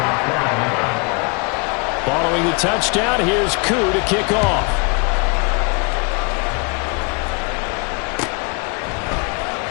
Following the touchdown, here's Koo to kick off.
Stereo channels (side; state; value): right; quieter; 32.3 dB